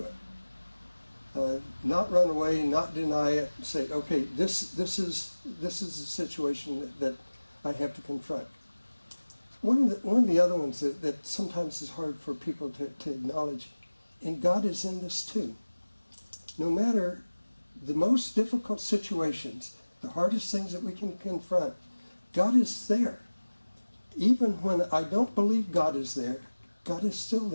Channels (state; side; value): inverted; both; correlation -1.00